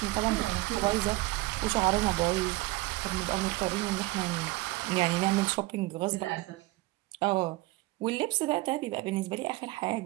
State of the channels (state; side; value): quieter; left; 20.3 dB